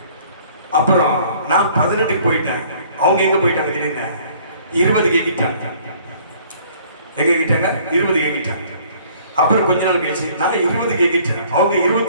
அப்புறம் நான் 18க்கு போயிட்டேன். அவங்க எங்கே போயிட்டாங்க திடீர்னு? 20க்கு எங்கிட்டாங்க. எங்கே எங்கிட்டாங்க? 20க்கு எங்கிட்டாங்க. அப்புறம் கொஞ்ச நாள் கழிச்சு நான் 20 கேக்கிட்டேன், அவங்க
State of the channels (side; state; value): both; inverted; correlation -0.56